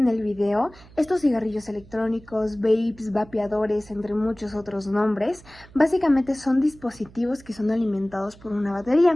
el video, estos cigarrillos electrónicos, vapes, vapeadores, entre muchos otros nombres, básicamente son dispositivos que son alimentados por una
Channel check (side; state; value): right; noise; hum, 23 dB below the sound